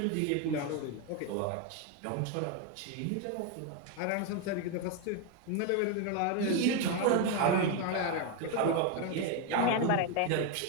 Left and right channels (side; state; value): both; different; correlation 0.01